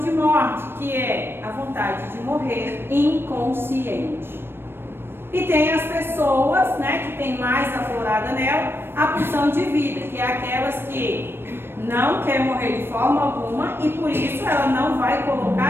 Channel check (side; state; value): left; late; 0.11 ms